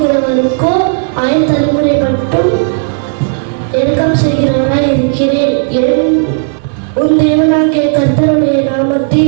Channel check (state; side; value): silent; left; digital silence